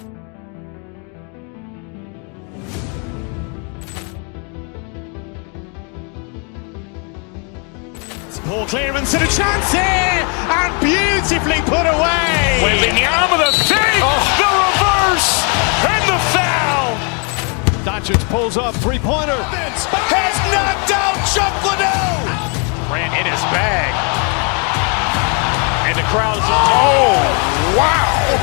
Poor clearance and a chance here, and beautifully put away. Wembanyama the fake, the reverse, and the foul. Doncic pulls up, three-pointer. Has knocked out Chuck Liddell. Ran in his bag. And the crowd is, oh, wow.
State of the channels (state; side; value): quieter; right; 36.9 dB